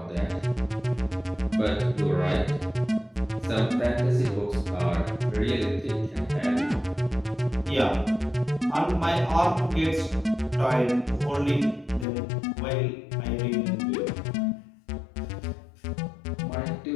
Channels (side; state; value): right; drops out; at 12.1 s